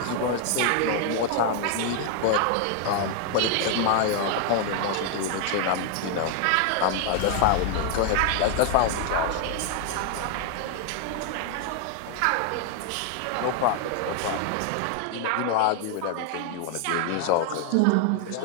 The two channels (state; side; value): different; both; correlation 0.00